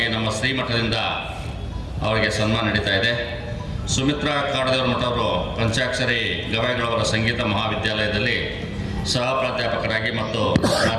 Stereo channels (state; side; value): identical; both; correlation 1.00